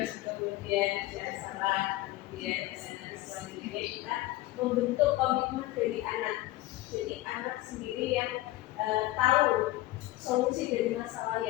kemudian ada salah, kemudian nanti selanjutnya kita membentuk komitmen dari anak. Jadi anak sendiri yang tahu solusi dari masalah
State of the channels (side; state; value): right; quieter; 17.3 dB